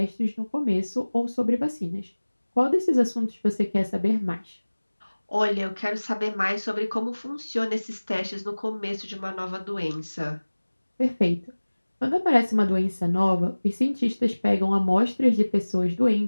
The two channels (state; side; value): inverted; both; correlation -1.00